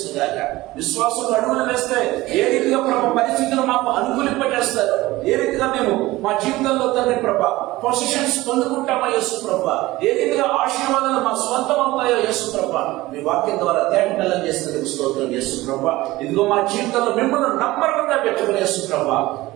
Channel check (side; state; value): left; quieter; 18.6 dB